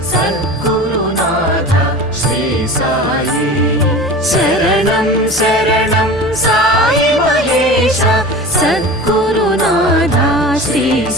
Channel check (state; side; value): normal; both; correlation 0.35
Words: సద్గురునాథ శ్రీ సాయి శరణం శరణం సాయి మహేశ సద్గురునాథ శ్రీ